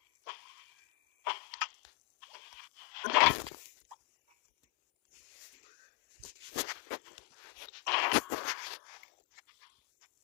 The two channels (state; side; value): quieter; right; 27.5 dB